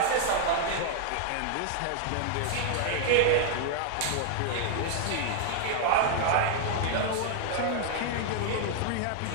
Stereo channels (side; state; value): both; different; correlation 0.00